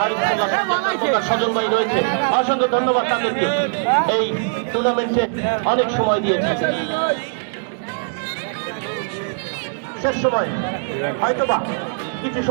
সজল ভাই রয়েছে, অসংখ্য ধন্যবাদ তাদেরকে, এই টুর্নামেন্টে অনেক সময় দিয়েছে। শেষ সময় হয়তোবা কিছু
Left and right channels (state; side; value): silent; left; digital silence